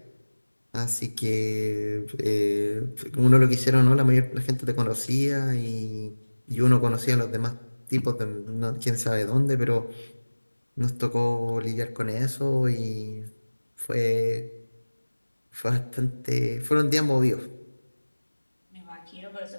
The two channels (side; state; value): both; inverted; correlation -1.00